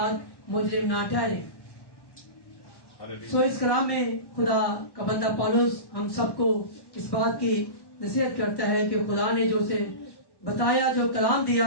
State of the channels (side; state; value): right; late; 1.1 ms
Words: मुजरिम ना ठहरे। सो इस कलाम में खुदा का बंदा पौलुस हम सबको इस बात की नसीहत करता है कि खुदा ने जो उसे बताया, जो कलाम